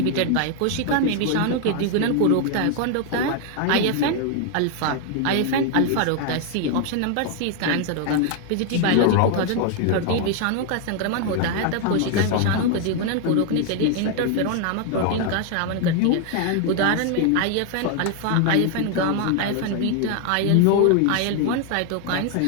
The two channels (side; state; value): both; different; correlation 0.00